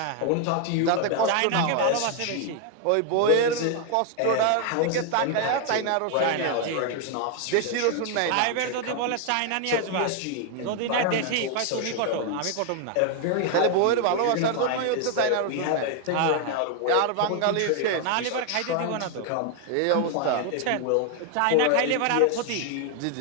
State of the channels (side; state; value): both; different; correlation 0.00